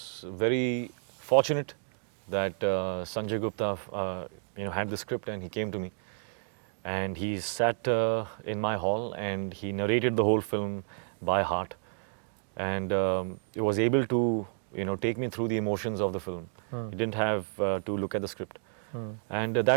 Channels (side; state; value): left; silent; 57 dB below the other